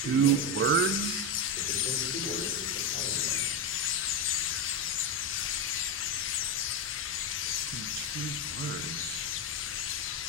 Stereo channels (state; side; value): normal; both; correlation 0.11